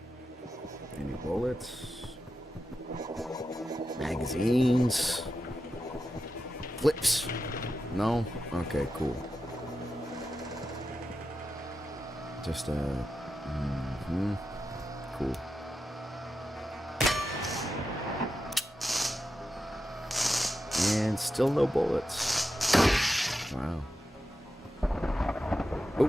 Any bullets? Magazines? Flips? No? Okay, cool. Just, cool. And still no bullets. Wow. Oh.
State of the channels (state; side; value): normal; both; correlation 0.90